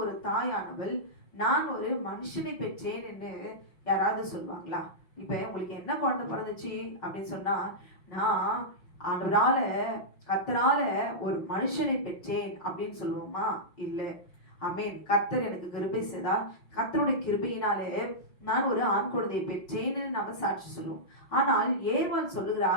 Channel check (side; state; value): right; late; 5.8 ms